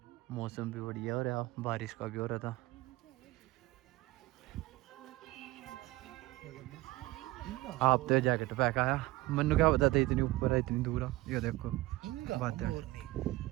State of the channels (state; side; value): quieter; left; 19.1 dB